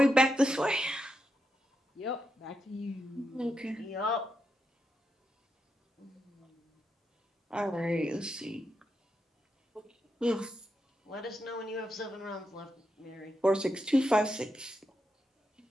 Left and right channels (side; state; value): both; normal; correlation 0.85